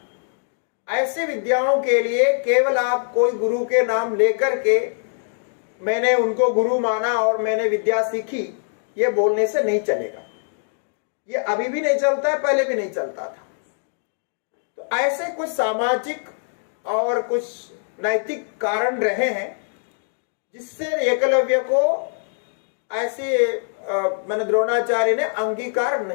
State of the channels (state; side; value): silent; right; digital silence